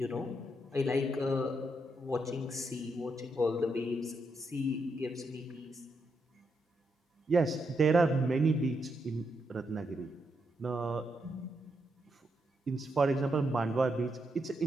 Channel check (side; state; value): both; normal; correlation 0.81